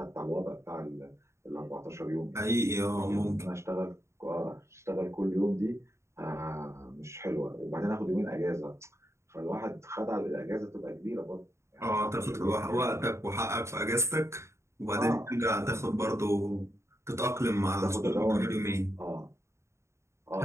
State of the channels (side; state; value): left; late; 0.14 ms